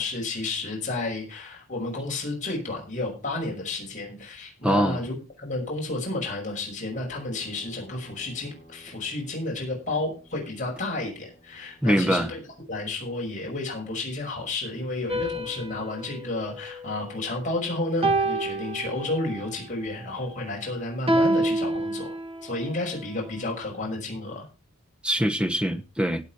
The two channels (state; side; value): normal; both; correlation 0.53